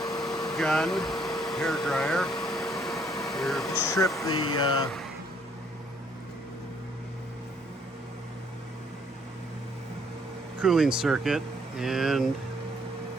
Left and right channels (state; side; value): normal; both; correlation 0.66